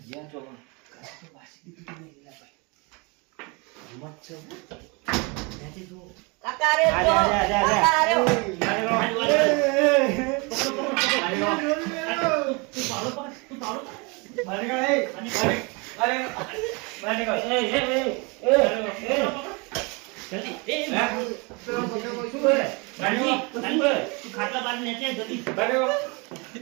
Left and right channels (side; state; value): left; quieter; 29.5 dB